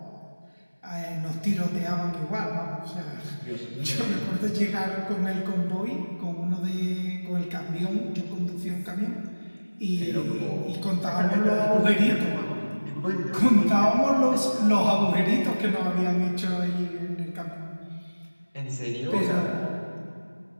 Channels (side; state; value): both; inverted; correlation -1.00